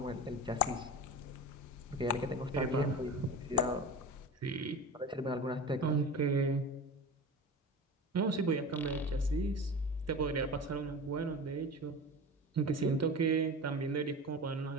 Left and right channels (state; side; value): normal; both; correlation 0.32